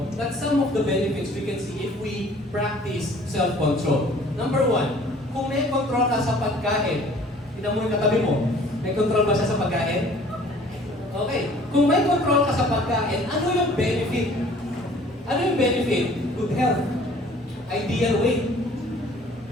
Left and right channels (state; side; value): normal; both; correlation 0.52